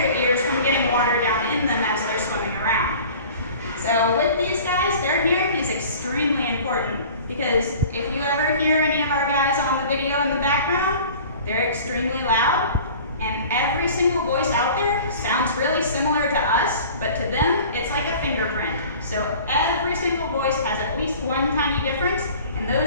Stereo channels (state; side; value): inverted; both; correlation -0.44